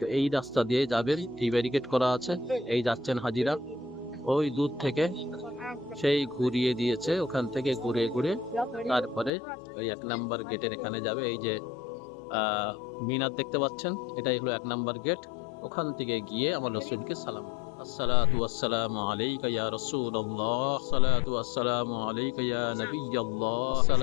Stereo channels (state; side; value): drops out; right; at 9.3 s